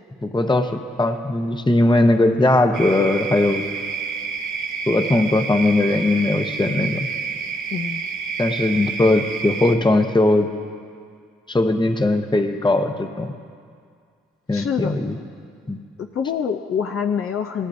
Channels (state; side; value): normal; both; correlation 0.80